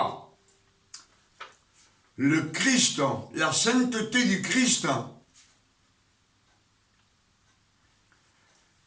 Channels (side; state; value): both; identical; correlation 1.00